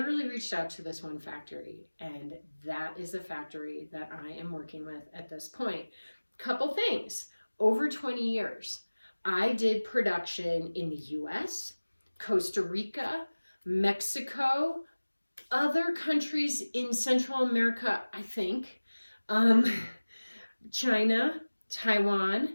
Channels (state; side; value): inverted; both; correlation -1.00